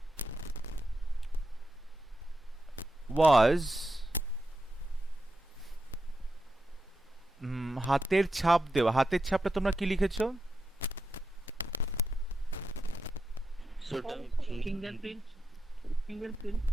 was হাতের ছাপ দেওয়া হাতের ছাপটা তোমরা কি লিখেছো Fingerprint.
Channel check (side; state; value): both; normal; correlation 0.87